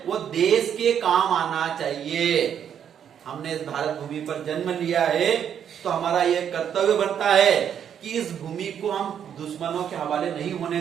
वो देश के काम आना चाहिए। हमने इस भारत भूमि पर जन्म लिया है, तो हमारा ये कर्तव्य बनता है कि इस भूमि को हम दुश्मनों के हवाले नहीं होने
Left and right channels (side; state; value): left; quieter; 8.8 dB